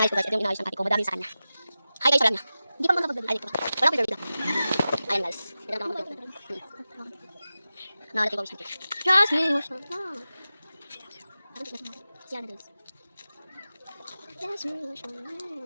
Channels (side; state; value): both; inverted; correlation -0.94